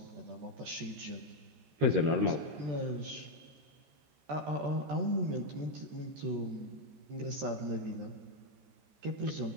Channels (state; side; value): late; left; 13 ms